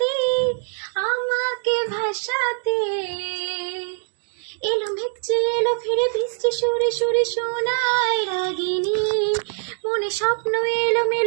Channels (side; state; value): left; silent; digital silence